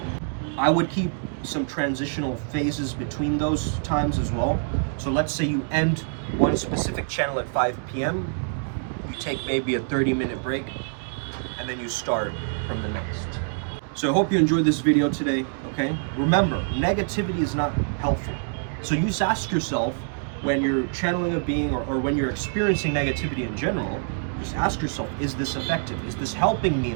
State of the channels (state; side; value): silent; left; digital silence